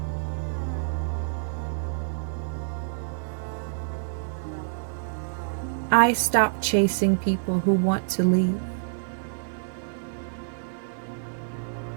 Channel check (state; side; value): silent; left; digital silence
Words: I stop chasing people who want to leave.